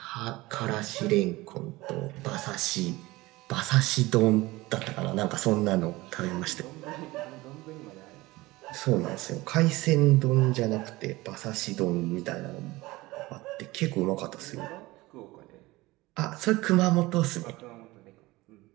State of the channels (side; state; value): left; quieter; 20.1 dB